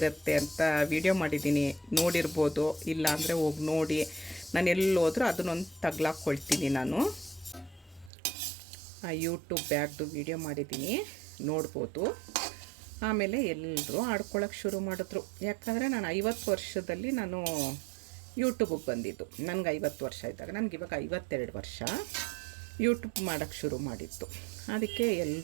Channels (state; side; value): drops out; left; at 8.1 s